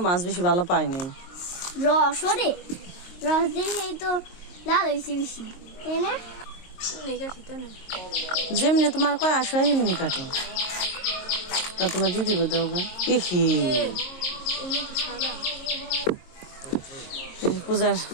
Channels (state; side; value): late; right; 22 ms